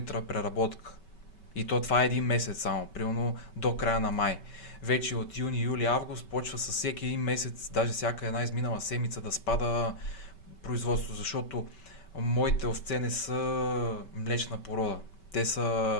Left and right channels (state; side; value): late; right; 5.2 ms